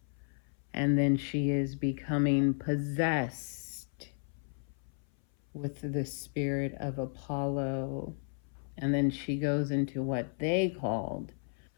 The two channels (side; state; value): right; silent; 55 dB below the other